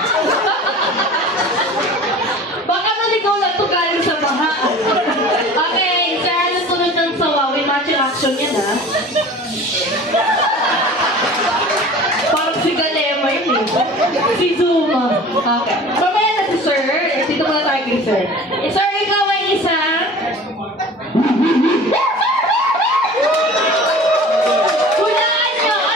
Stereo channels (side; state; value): both; normal; correlation 0.42